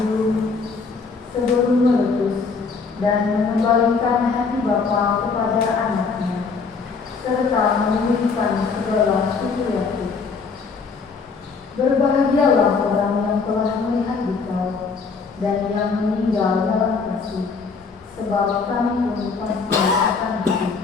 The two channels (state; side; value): quieter; right; 4.9 dB